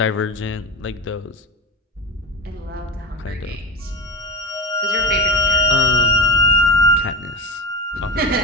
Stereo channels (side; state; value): both; normal; correlation 0.23